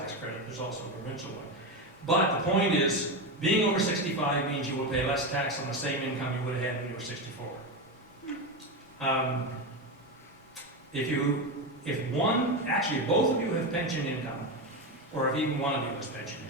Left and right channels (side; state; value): both; normal; correlation 0.15